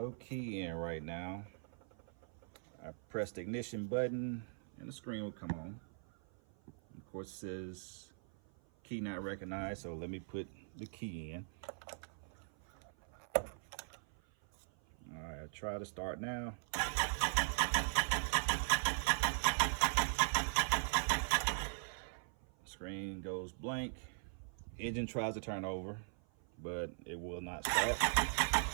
key in right now. I pressed the ignition button and the screen will come on. Of course, it says key not recognized, so let me put the key in. All right, I'll try to start now. Screen goes blank. Engine tries to turn over, but it will not start.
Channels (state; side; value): silent; left; 51 dB below the other